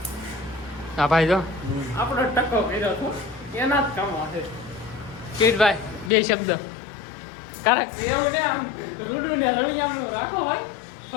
હા ભાઈ જો આપણો ટકો કર્યો હતો એના જ કામ હશે. કિરીટભાઈ બે શબ્દ કારણ એવું ને આમ રૂડું ને રવિયામનું રાખો ભાઈ,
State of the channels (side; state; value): right; drops out; at 6.1 s